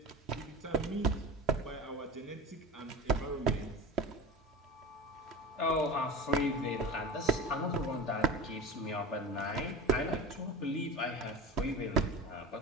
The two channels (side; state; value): both; normal; correlation 0.31